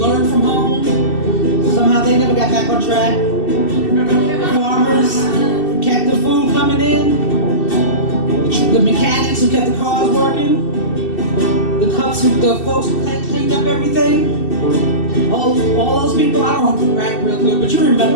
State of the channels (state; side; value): late; right; 2.7 ms